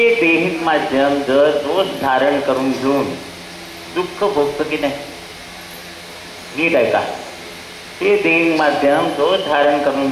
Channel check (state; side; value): identical; both; correlation 1.00